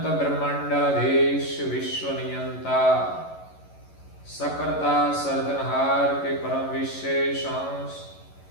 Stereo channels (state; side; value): late; right; 11 ms